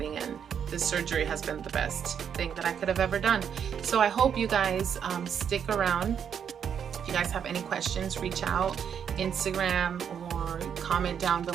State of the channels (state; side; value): quieter; left; 8.0 dB